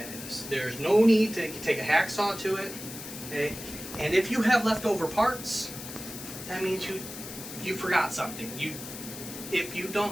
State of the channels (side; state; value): left; noise; hiss, 11 dB below the sound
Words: of this. There's no need to take a hacksaw to it. Okay? And if you have leftover parts, that means you forgot something. If you